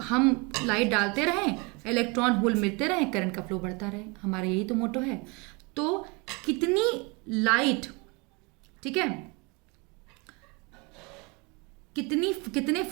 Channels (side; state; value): left; quieter; 29.0 dB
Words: हम लाइट डालते रहें, इलेक्ट्रॉन होल मिलते रहें, करंट का फ्लो बढ़ता रहे, हमारा यही तो मोटो है। तो कितनी लाइट, ठीक है, कितने